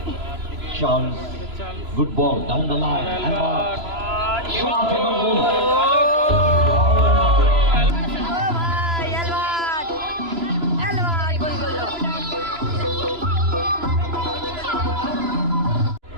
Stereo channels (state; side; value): late; left; 3.0 ms